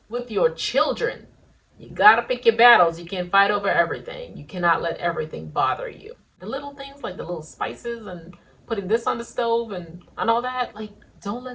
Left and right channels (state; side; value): identical; both; correlation 1.00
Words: with your children, you gotta pick your battles. You can't fight over everything. You cannot let everything bother you. The little things like the little spices and putting this on the stove and all that, like, don't